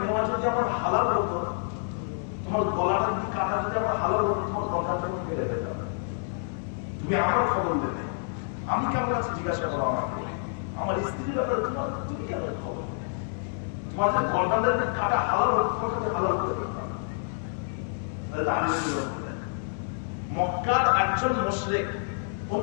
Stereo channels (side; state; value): right; silent; digital silence